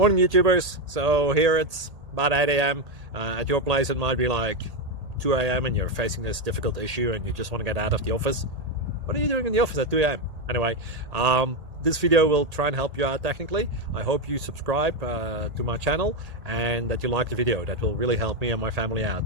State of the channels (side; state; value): left; late; 1.8 ms